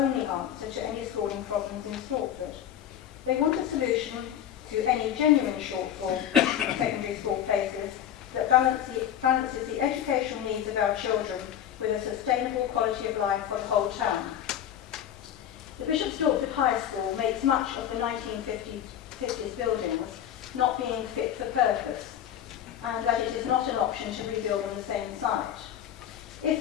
answer to any schooling problems in Stortford. They want a solution to any genuine shortfall in secondary school places that balances the educational needs of our children with a sustainable quality of life for the whole town. The Bishop Stortford High School makes much of the 1950s buildings not being fit for purpose, and that it is not an option to rebuild on the same site.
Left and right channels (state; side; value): quieter; right; 10.3 dB